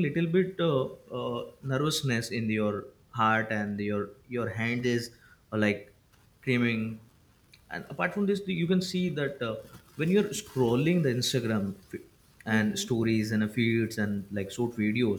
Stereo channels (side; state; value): both; identical; correlation 1.00